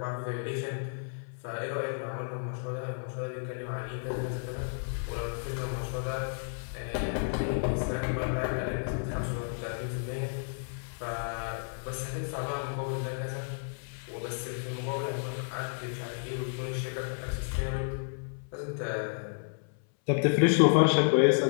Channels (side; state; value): right; silent; 56 dB below the other